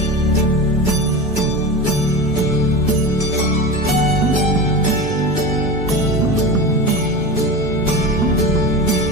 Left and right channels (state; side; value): normal; both; correlation 0.27